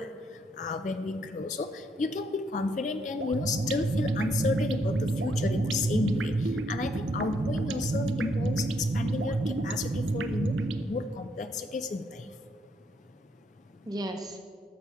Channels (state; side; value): normal; both; correlation 0.73